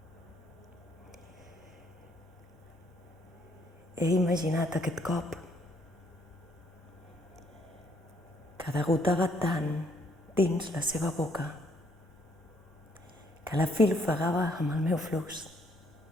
He imaginat aquest cop que degotava tant dins la seva boca que la fil ofegava amb el meu flux.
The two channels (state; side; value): normal; both; correlation 0.68